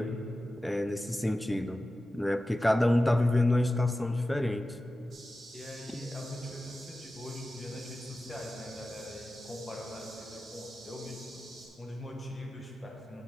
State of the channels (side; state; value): both; normal; correlation 0.94